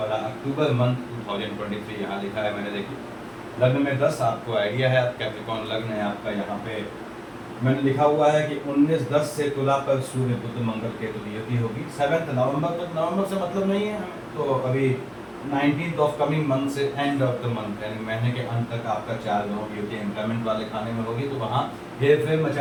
अक्टूबर मंथ 2023 यहाँ लिखा है मैंने। देखिए, लग्न में 10 आपको आइडिया है, आप कैप्रिकॉर्न लग्न है आपका। यहाँ पे मैंने लिखा हुआ है कि 19-10 से तुला पर सूर्य बुध मंगल केतु की युति होगी 7 नवंबर तक। नवंबर से मतलब नहीं है हमें, तो अभी 19th ऑफ कमिंग मंथ से एंड ऑफ द मंथ, यानी महीने के अंत तक आपका 4 ग्रहों की युति एम्प्लॉयमेंट वाले खाने में होगी, तो वहाँ हेर फेर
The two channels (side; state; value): both; identical; correlation 1.00